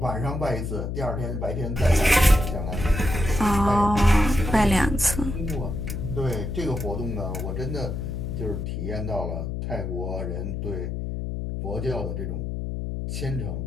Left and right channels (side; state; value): left; noise; hum, 4 dB below the sound